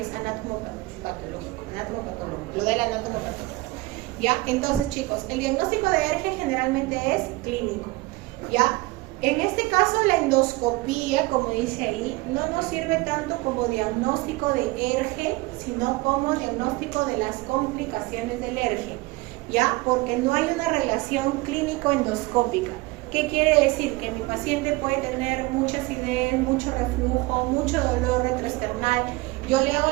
anatomopatológico, lo del anatomopatológico. ¿Ya? Entonces, chicos, el diagnóstico de ERGE generalmente es clínico, ¿ya? En este caso, la endoscopía, como dice ahí, no nos sirve tanto como diagnóstico de ERGE, sino como diagnóstico de las complicaciones del ERGE, ¿ya? Porque no hay una relación clínico-endoscópica. ¿Qué quiere decir? Que mi paciente puede tener mucha acidez, mucho reflujo, mucho dolor retroesternal. Yo le hago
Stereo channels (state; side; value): quieter; left; 21.6 dB